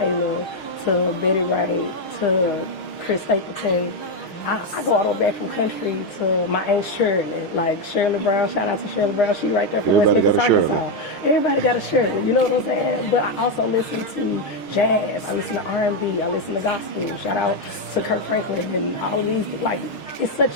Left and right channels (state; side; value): late; right; 6.4 ms